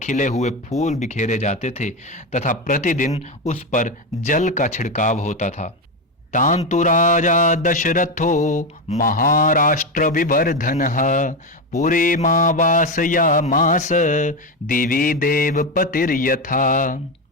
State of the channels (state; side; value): normal; both; correlation 0.13